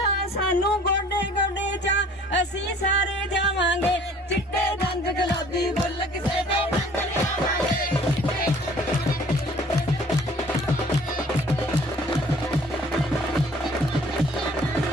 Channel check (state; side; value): normal; both; correlation 0.53